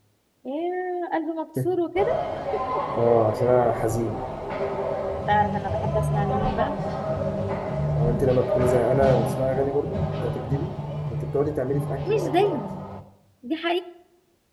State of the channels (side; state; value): both; identical; correlation 1.00